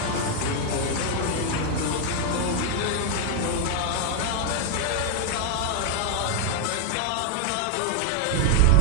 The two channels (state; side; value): different; both; correlation 0.00